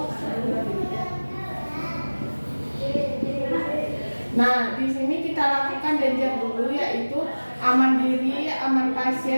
Nah, di sini kita lakukan danger dulu, yaitu aman diri, aman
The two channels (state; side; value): inverted; both; correlation -1.00